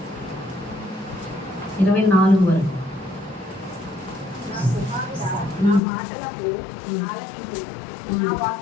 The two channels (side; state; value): right; drops out; at 5.8 s